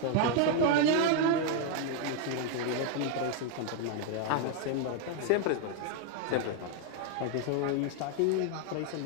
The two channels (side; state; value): both; different; correlation 0.00